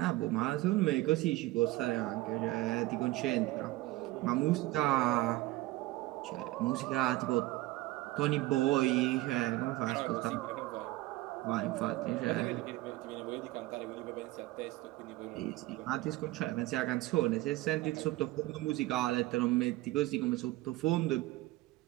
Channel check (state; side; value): quieter; left; 18.5 dB